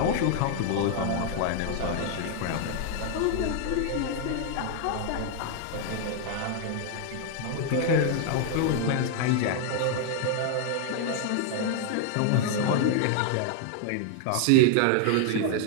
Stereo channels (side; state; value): both; different; correlation 0.00